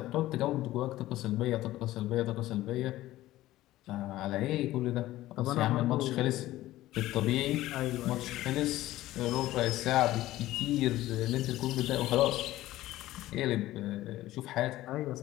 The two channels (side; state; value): right; quieter; 15.7 dB